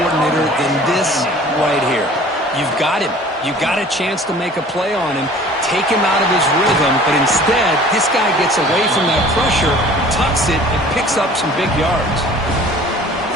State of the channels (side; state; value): both; normal; correlation 0.48